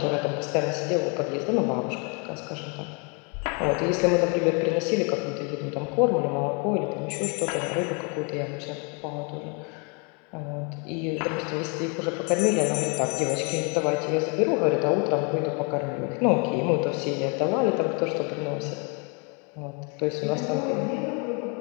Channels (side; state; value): right; quieter; 34.3 dB